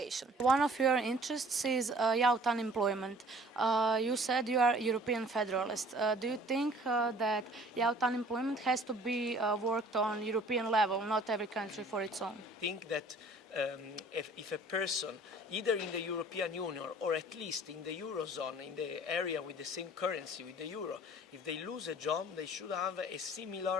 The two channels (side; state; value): both; normal; correlation 0.52